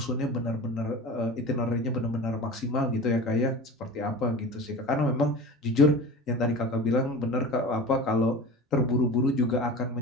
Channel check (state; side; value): normal; both; correlation 0.34